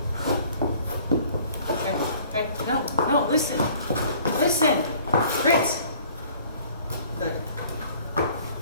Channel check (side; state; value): both; inverted; correlation -0.53